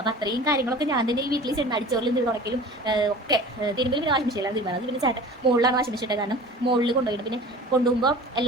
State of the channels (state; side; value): normal; both; correlation 0.40